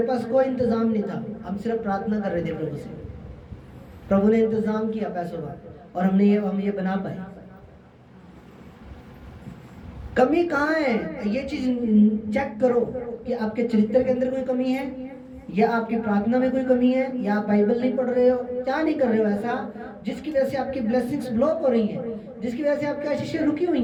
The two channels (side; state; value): both; identical; correlation 1.00